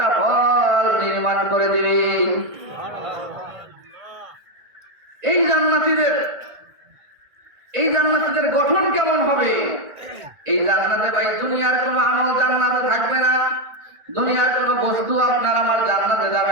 ফল নির্মাণ করে দিবে। এই জান্নাতীদের গঠন কেমন হবে? এই জান্নাতে ভাই দুনিয়ার কোনো আমল জান্নাতে থাকবে না, দুনিয়ার কোনো বস্তু আপনার আমার জান্নাতে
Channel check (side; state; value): left; late; 1.5 ms